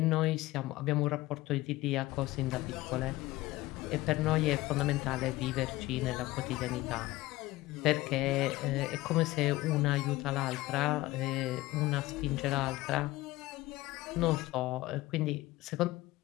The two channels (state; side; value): quieter; right; 18.3 dB